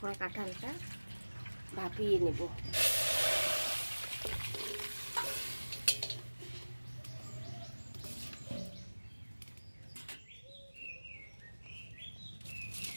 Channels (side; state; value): both; inverted; correlation -1.00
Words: কাঁঠালটা ভাপিয়ে নেব।